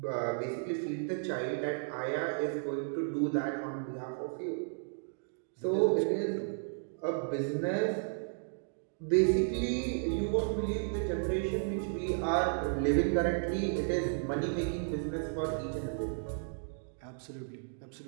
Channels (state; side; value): silent; left; digital silence